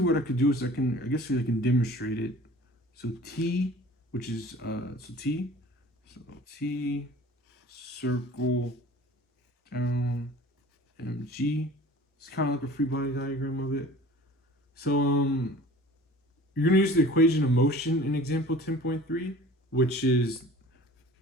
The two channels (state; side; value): normal; both; correlation 0.45